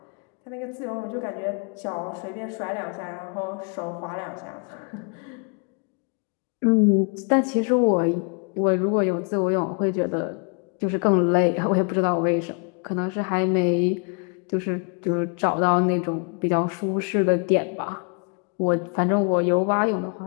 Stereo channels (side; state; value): right; quieter; 38.4 dB